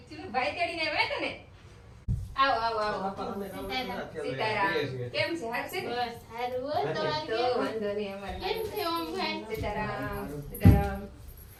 ભાઈ તેડીને આવ્યા હતા ને. આવો આવો આવો. સીતારામ. કેમ છે? હારું છે? બસ સારું. તો વાંધો નહીં અમારે. કેમ છે ઓમભાઈ? સીતારામ. સીતારામ.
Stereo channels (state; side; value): identical; both; correlation 1.00